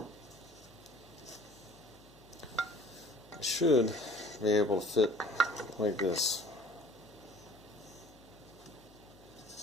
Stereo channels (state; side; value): noise; left; hum, 25 dB below the sound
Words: it should be able to fit like this.